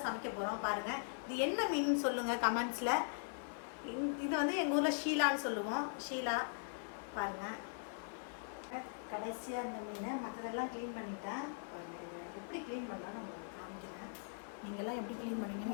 சமைக்க போகிறோம். பாருங்கள், இது என்ன மீன் சொல்லுங்கள் கமெண்ட்ஸில். இது வந்து எங்கள் ஊரில் ஷீலான்னு சொல்லுவோம். ஷீலா பாருங்கள். கடைசியாக இந்த மீன் மற்றதெல்லாம் க்ளீன் பண்ணிட்டேன். பாருங்கள், இது எப்படி க்ளீன் பண்ணுறோன்னு உங்களுக்கு காமிக்கிறேன். நீங்கள்லாம் எப்படி க்ளீன்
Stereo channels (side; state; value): right; silent; 51 dB below the other